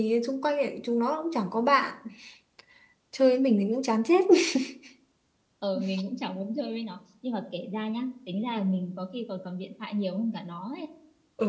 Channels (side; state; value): both; identical; correlation 1.00